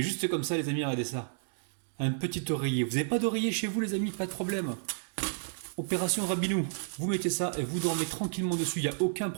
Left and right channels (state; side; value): silent; left; digital silence